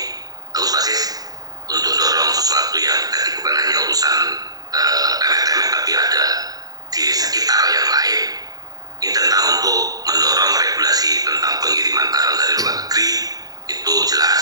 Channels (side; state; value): left; late; 0.18 ms